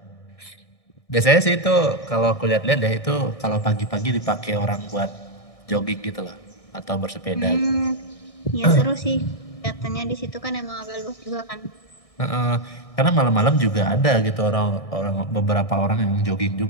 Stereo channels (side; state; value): right; late; 1.6 ms